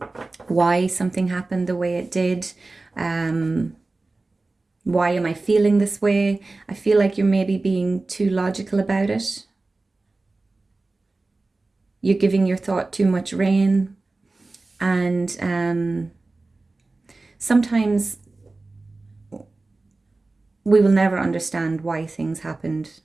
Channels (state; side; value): quieter; left; 3.3 dB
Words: why something happened the way it did, why am I feeling this way? I feel like you're maybe being too logical about it. You're giving your thought too much rein, and sometimes we will never understand why things happened